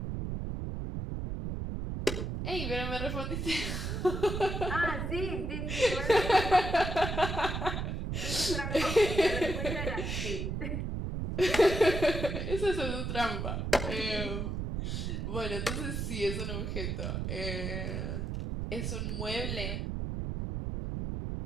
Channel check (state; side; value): noise; right; rumble, 3 dB below the sound